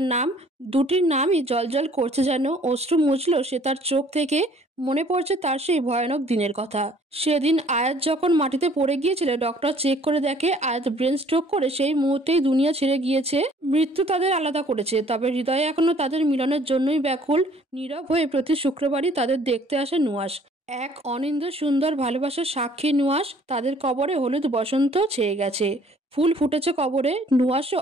নাম। দুটির নামই জলজল করছে যেন। অশ্রু মুছল সে তার চোখ থেকে। মনে পড়ছে তার সেই ভয়ানক দিনের কথা। সেদিন আয়াত যখন মাটিতে পড়ে গিয়েছিল, ডক্টর চেক করে দেখে আয়াত ব্রেন স্ট্রোক করে সেই মুহূর্তেই দুনিয়া ছেড়ে গিয়েছে। মৃত্যু তাদের আলাদা করেছে, তবে হৃদয়ে এখনো তাদের মিলনের জন্যই ব্যাকুল। নীরব হয়ে প্রতি শুক্রবারই তাদের দেখতে আসে নুয়াস। এক অনিন্দ সুন্দর ভালোবাসার সাক্ষী নুয়াস। তাদের কবরে হলুদ বসন্ত ছেয়ে গেছে, ফুল ফুটেছে কবরে। নুয়াসও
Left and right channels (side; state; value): both; normal; correlation 0.57